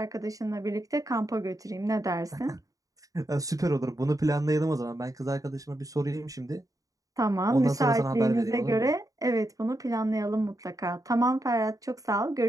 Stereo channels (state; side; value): late; left; 0.17 ms